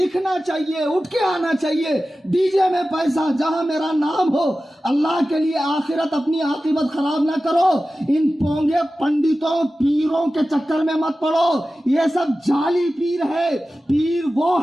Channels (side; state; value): both; normal; correlation 0.95